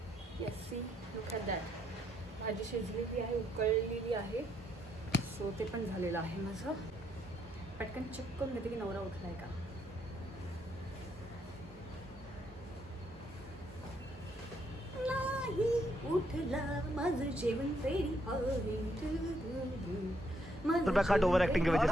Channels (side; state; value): both; normal; correlation 0.74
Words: Yes see look at that. भाजी शिजलेली आहे, उकळलेली आहे. सो ते पण झालेलं आहे माझं. पटकन चेक करून घेते की नवरा उठला आहे का. नाही उठला, माझं जेवण रेडी आहे